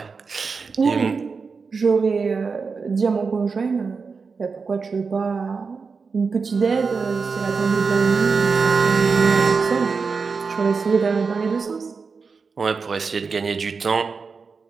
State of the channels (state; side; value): quieter; left; 5.0 dB